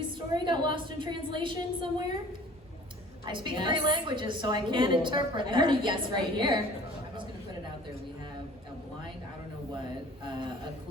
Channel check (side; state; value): both; normal; correlation 0.48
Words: story got lost in translation somewhere? I speak Yes. 3 languages, so I can't Ooh, interpret I that. heard a yes right here. I'm just gonna put it out there, we have a blind, I don't know what, a